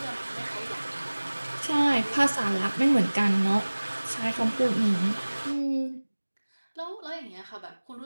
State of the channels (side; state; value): both; inverted; correlation -1.00